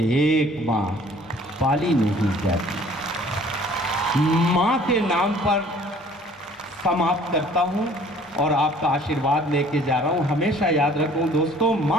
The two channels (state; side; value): normal; both; correlation 0.53